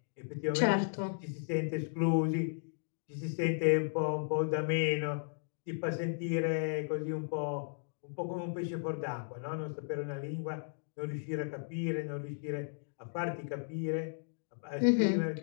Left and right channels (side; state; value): right; silent; digital silence